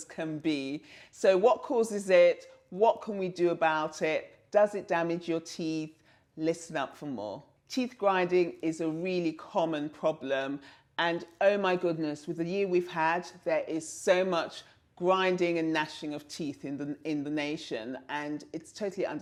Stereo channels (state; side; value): identical; both; correlation 1.00